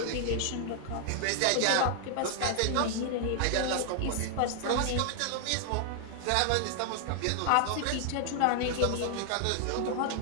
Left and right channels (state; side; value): different; both; correlation 0.00